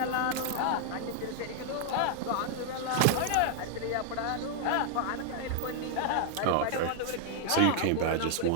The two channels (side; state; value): both; different; correlation 0.00